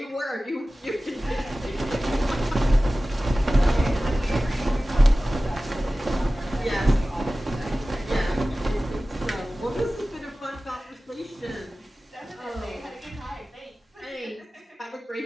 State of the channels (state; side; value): normal; both; correlation 0.96